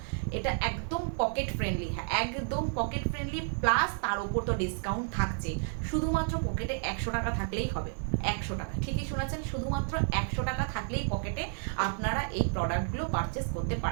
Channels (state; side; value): silent; left; 57 dB below the other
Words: এটা একদম পকেট ফ্রেন্ডলি, হ্যাঁ একদম পকেট ফ্রেন্ডলি, প্লাস তার উপর তো ডিসকাউন্ট থাকছে। শুধুমাত্র পকেটে 100 টাকা থাকলেই হবে। 100 টাকা, ঠিকই শোনাচ্ছেন, শুধুমাত্র 100 টাকা থাকলেই পকেটে আপনারা এই প্রোডাক্টগুলো পারচেস করতে